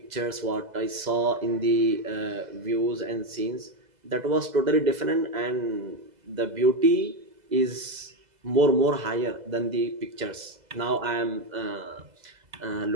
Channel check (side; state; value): left; late; 2.0 ms